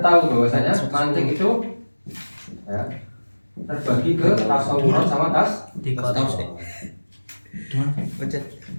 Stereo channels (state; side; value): inverted; both; correlation -1.00